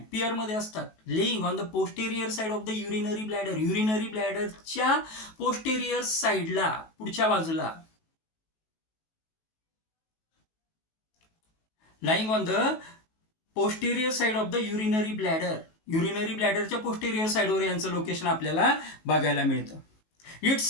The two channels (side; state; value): right; late; 18 ms